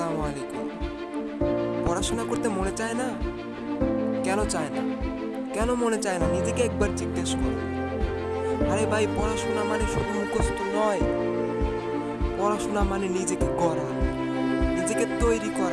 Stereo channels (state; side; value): identical; both; correlation 1.00